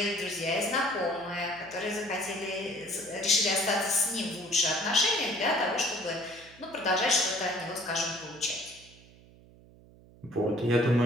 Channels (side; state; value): right; noise; hum, 24 dB below the sound